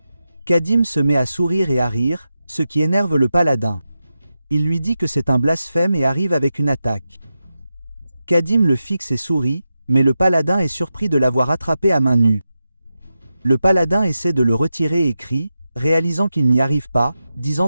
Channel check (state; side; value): inverted; both; correlation -0.90